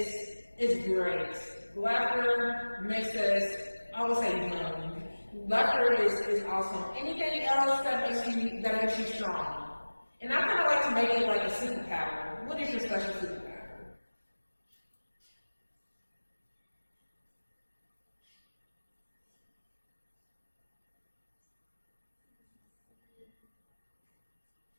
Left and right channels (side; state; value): both; inverted; correlation -1.00